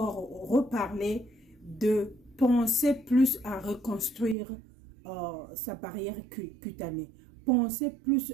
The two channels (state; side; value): drops out; left; at 4.4 s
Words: reparler de penser plus à reconstruire sa barrière cutanée. Pensez plus